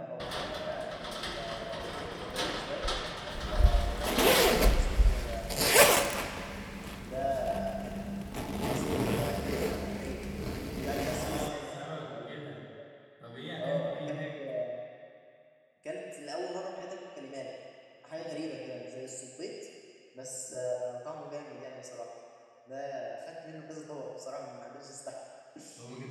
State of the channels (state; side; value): identical; both; correlation 1.00